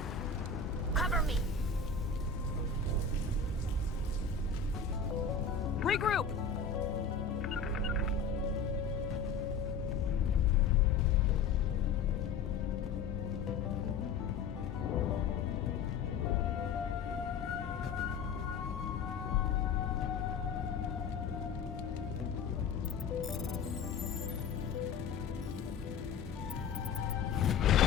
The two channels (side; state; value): right; quieter; 5.5 dB